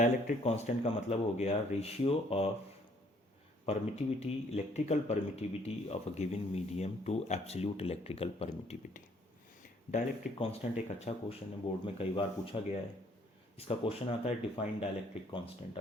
कांस्टेंट का मतलब हो गया ratio of permittivity, electrical permittivity of a given medium to absolute electrical permittivity. Dielectric constant एक अच्छा क्वेश्चन है, बोर्ड में कई बार पूछा गया है। इसका क्वेश्चन आता है डिफाइन डाइलेक्ट्रिक कांस्टेंट।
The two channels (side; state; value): both; normal; correlation 0.63